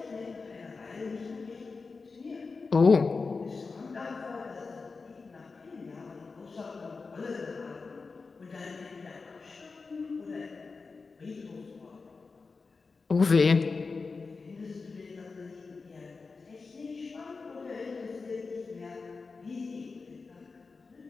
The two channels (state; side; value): quieter; right; 4.4 dB